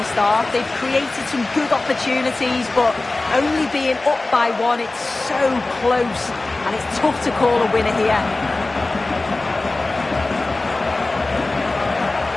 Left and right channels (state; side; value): quieter; right; 3.1 dB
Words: half. They've created some good opportunities, but only being up by one, it's so close, and it's tough to call a winner here.